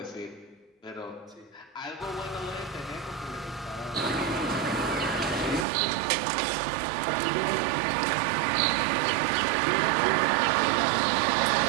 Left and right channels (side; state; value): left; drops out; at 5.7 s